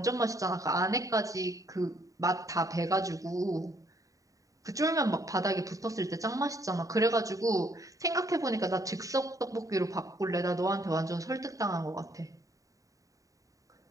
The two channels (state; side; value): late; left; 0.16 ms